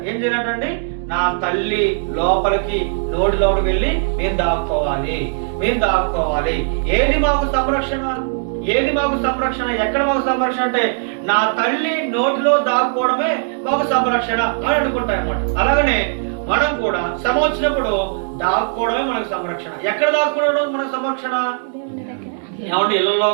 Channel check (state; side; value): silent; left; digital silence